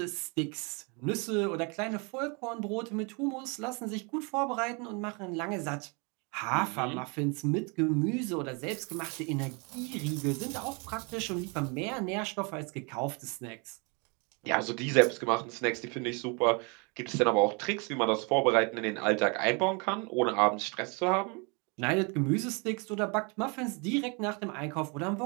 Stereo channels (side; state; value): left; quieter; 32.4 dB